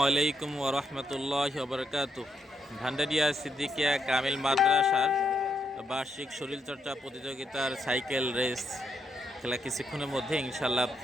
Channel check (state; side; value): normal; both; correlation 0.79